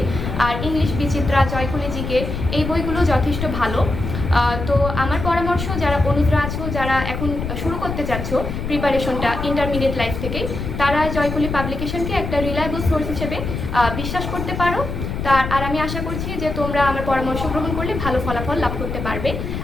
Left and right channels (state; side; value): noise; left; rumble, 5 dB below the sound